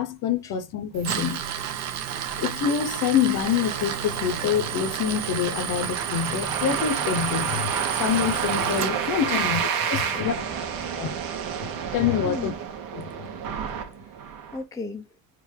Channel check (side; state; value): both; normal; correlation 0.02